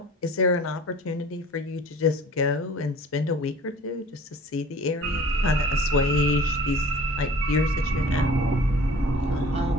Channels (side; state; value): both; normal; correlation 0.46